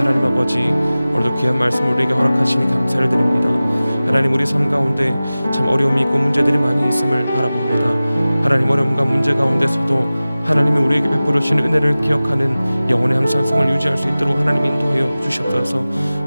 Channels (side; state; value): both; inverted; correlation -0.97